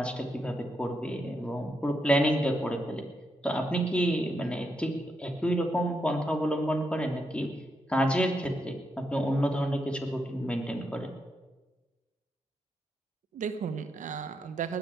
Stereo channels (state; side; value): normal; both; correlation 0.82